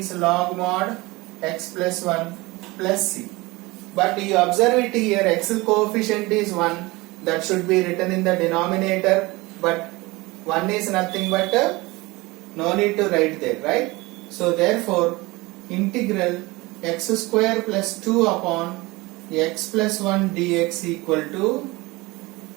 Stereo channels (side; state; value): left; quieter; 22.3 dB